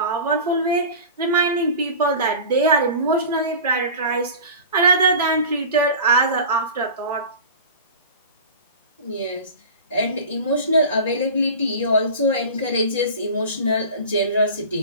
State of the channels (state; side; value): inverted; both; correlation -0.35